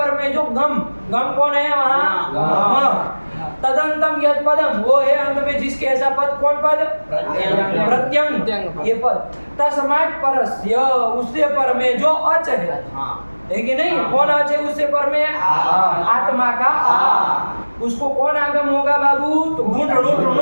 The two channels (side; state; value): both; inverted; correlation -1.00